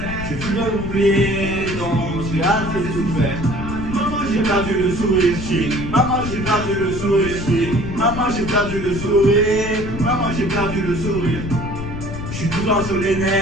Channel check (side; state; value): left; noise; rumble, 7 dB below the sound